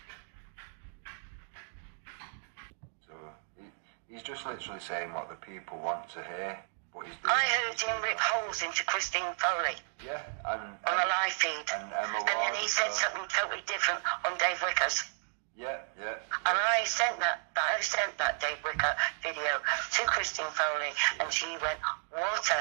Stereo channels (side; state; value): left; silent; digital silence